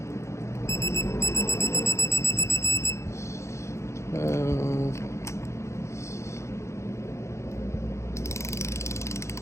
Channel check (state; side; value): late; right; 0.14 ms